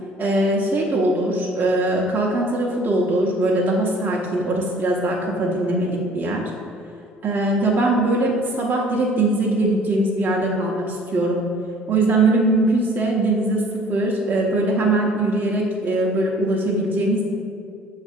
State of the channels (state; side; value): normal; both; correlation 0.53